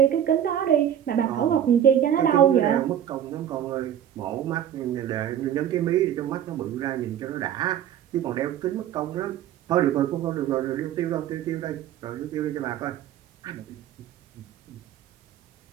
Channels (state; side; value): quieter; left; 10.3 dB